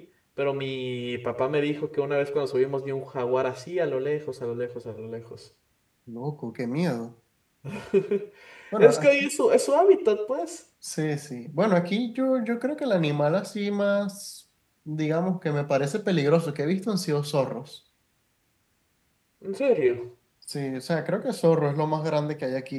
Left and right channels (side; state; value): both; identical; correlation 1.00